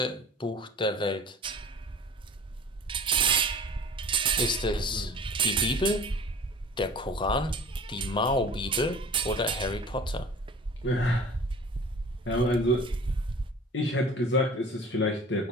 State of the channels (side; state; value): both; normal; correlation 0.44